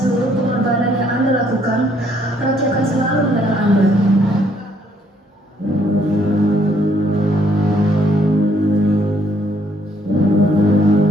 pengorbanan yang Anda lakukan, rakyat akan selalu mengenang Anda.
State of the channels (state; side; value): normal; both; correlation 0.67